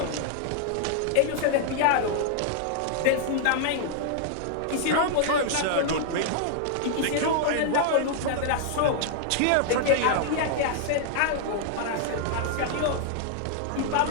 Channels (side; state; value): both; different; correlation -0.01